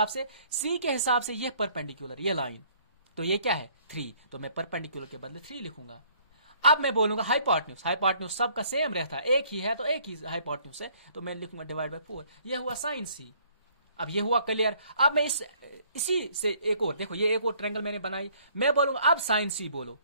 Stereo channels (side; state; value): both; inverted; correlation -0.60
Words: हिसाब से ये परपेंडिकुलर, ये लाइन, तो ये क्या है 3, तो मैं परपेंडिकुलर के बदले 3 लिखूंगा। अब मैं बोलूंगा हाइपोटेन्यूज, हाइपोटेन्यूज सबका सेम रहता है, एक ही है तो एक ही हाइपोटेन्यूज है, तो मैं लिखूंगा डिवाइड बाय 4, ये हुआ साइन C। अब ये हुआ क्लियर। अब मैं इसी से एक और, देखो ये एक और ट्रायंगल मैंने बनाई, मैं बोलूंगा अब साइन C बोलो,